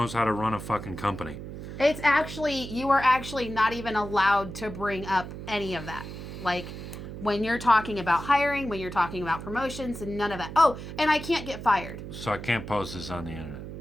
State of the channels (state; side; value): noise; right; hum, 10 dB below the sound